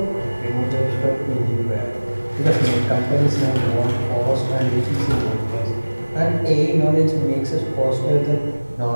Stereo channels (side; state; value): both; inverted; correlation -1.00